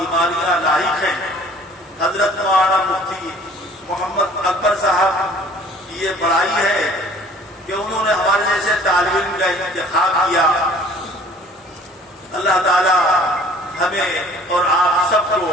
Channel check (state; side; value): normal; both; correlation 0.53